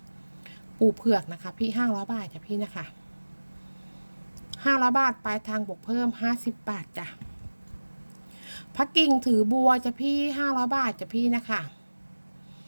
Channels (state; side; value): inverted; both; correlation -1.00